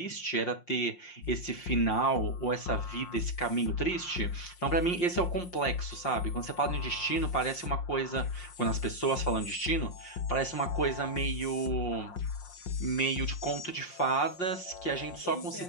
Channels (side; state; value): right; late; 5.6 ms